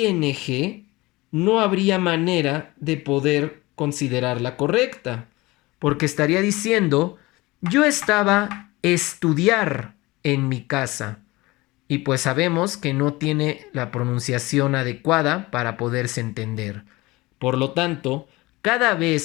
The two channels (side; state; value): right; quieter; 21.3 dB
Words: no habría manera de poder considerarla correcta, porque estaría diciendo, yo estaba estudiar en mi casa. Y pues sabemos que no tiene la pronunciación adecuada para poderse entender. Por lo tanto, cada